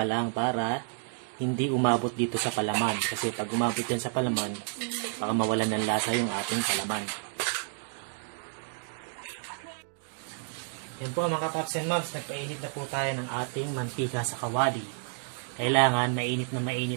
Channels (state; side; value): silent; left; 58 dB below the other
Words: lang para hindi umabot dito sa palaman. Kasi pag umabot din sa palaman, baka mawalan ng lasa yung ating palaman. Yan po mga Pops and Moms, nagpainit na po tayo ng ating mantika sa kawali. Kailangan mainit na